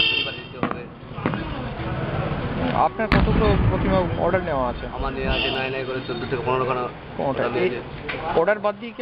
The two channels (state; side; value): identical; both; correlation 1.00